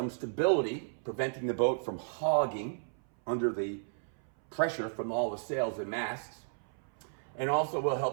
stability, preventing the boat from hogging under the pressure from all the sails and masts, and also will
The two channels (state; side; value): silent; left; 56 dB below the other